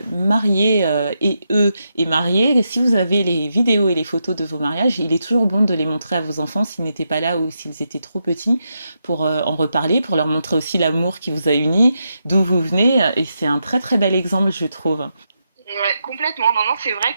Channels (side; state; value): both; inverted; correlation -0.84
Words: mariés et mariés, si vous avez les vidéos et les photos de vos mariages, il est toujours bon de les montrer à vos enfants s'ils n'étaient pas là ou s'ils étaient trop petits pour en reparler, pour leur montrer aussi l'amour qui vous a unis, d'où vous venez. Et c'est un très très bel exemple, je trouve. Ouais, complètement. Non, c'est vrai